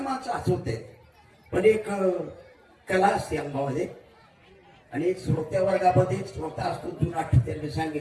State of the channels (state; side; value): identical; both; correlation 1.00